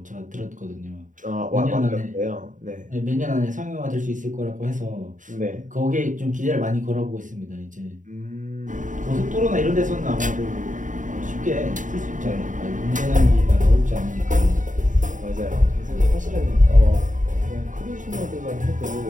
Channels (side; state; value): left; late; 0.37 ms